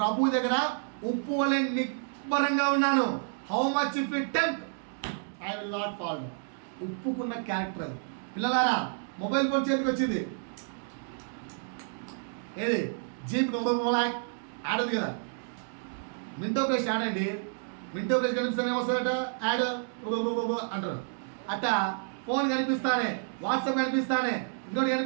దగ్గర ఉప్పు వలె నిబ్బరంగా ఉన్నాను. How much if it tempt I will not follow. ఉప్పుకున్న క్యారెక్టర్ అది. పిల్లలారా, మొబైల్ ఫోన్ చేతికి వచ్చింది, ఏది జీప్ యాడ్ ఉంది కదా, మింటో ఫ్రెష్ యాడ్ అండి. మింటో ఫ్రెష్ కనిపిస్తానే ఏమొస్తుందట, యాడ్ అంటారు. అట్ట ఫోన్ కనిపిస్తానే, వాట్సాప్ కనిపిస్తానే, ఇంకోటి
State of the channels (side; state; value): left; silent; digital silence